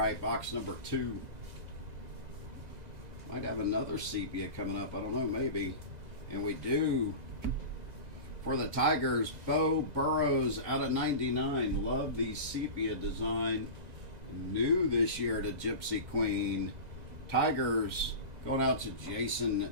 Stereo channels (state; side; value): late; left; 2.0 ms